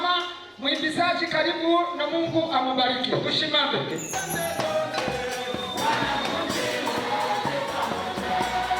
Mwimbizaji karibu na Mungu amubariki. Tusimame.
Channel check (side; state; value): both; identical; correlation 1.00